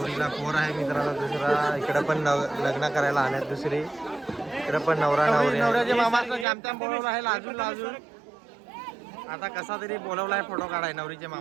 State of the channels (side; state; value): left; drops out; at 6.5 s